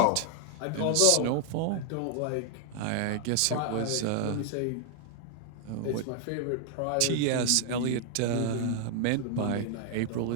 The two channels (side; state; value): both; different; correlation 0.00